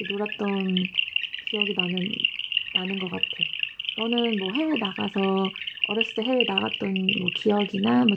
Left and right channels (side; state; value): both; identical; correlation 1.00